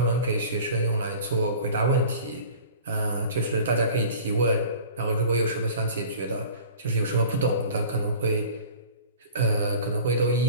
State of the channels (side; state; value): both; inverted; correlation -0.42